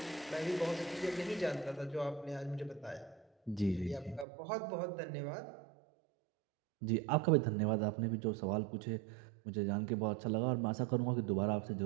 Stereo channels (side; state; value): left; drops out; at 4.2 s